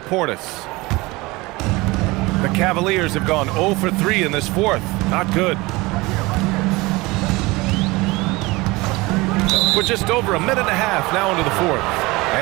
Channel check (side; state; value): left; quieter; 22.5 dB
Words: The Cavaliers have gone 0 for 3 in this fourth. Not good. We're just over a minute and a half now into the fourth.